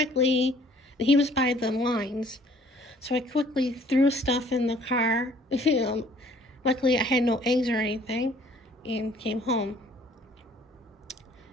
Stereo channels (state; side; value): normal; both; correlation 0.57